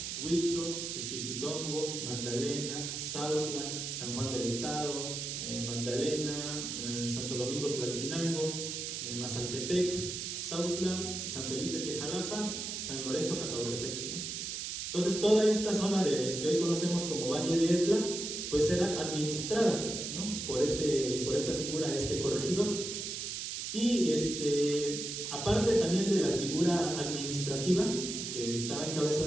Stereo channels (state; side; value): noise; right; hiss, 4 dB below the sound